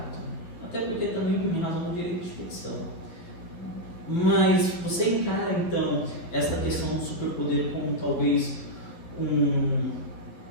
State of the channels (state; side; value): late; right; 12 ms